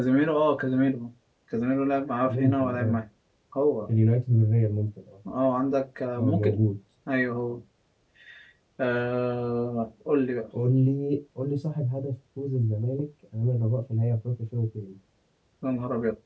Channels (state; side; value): identical; both; correlation 1.00